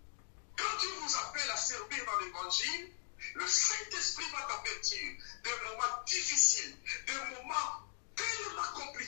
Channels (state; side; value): silent; right; digital silence